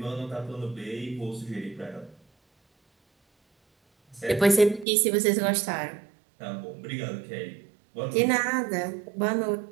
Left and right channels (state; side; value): drops out; left; at 4.9 s